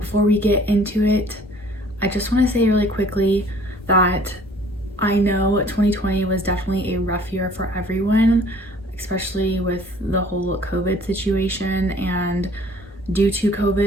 we get into it, I just want to say really quickly that I know 2020 was definitely a rough year for everyone, especially with the whole COVID situation, and due to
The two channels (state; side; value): normal; both; correlation 0.54